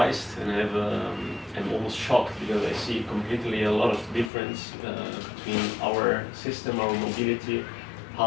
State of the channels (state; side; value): drops out; right; at 4.3 s